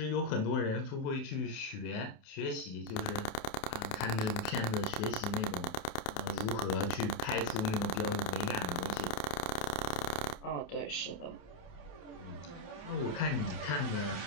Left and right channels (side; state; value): right; late; 28 ms